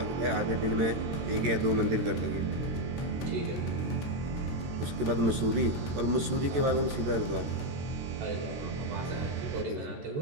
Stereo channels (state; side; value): late; left; 14 ms